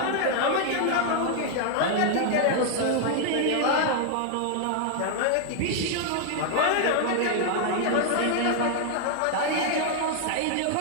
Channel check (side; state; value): both; different; correlation 0.00